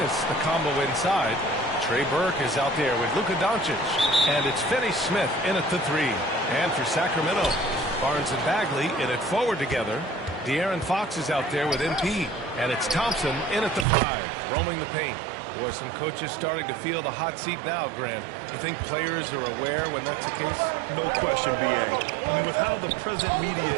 the combo inside. Trey Burke is out there with Luka Doncic. And it's Finney Smith in at the 3. And for Sacramento, Barnes and Bagley in it forward together. De'Aaron Fox is out there with MP. And it's Thompson in at the 5, roaming the paint. Boy, some coaches starting to feel the hot seat now, Grant. You think players are aware when that's the case? No question, BA. I mean, with how the present media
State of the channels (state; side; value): drops out; left; at 13.9 s